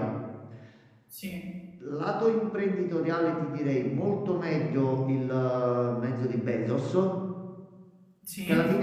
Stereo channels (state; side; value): identical; both; correlation 1.00